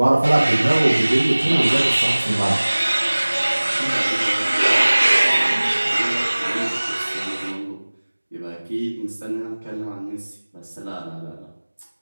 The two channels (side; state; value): both; inverted; correlation -1.00